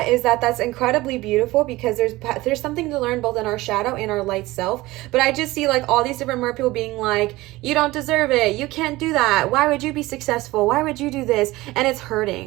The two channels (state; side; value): quieter; left; 19.2 dB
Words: is that that's incredibly beautiful, because there's something to learn both in our shadow and our light self. But I just see like all these different mer people being like, you don't deserve it, you can't do that, why would you be successful, why would you do this? And it's